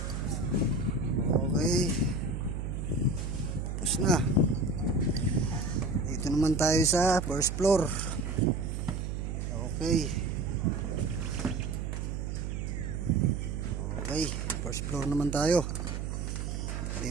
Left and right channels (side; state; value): right; noise; hum, 3 dB below the sound